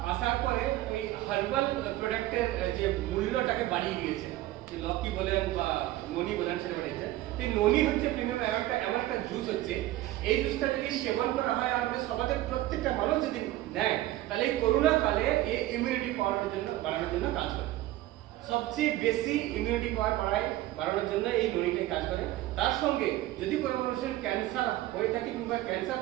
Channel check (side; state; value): left; quieter; 15.9 dB